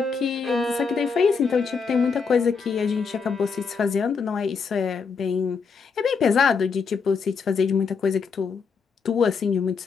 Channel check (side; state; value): right; quieter; 5.4 dB